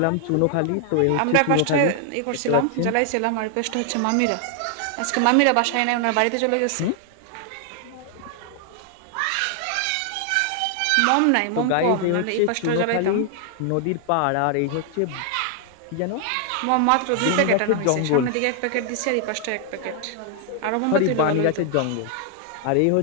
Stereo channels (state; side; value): different; both; correlation 0.00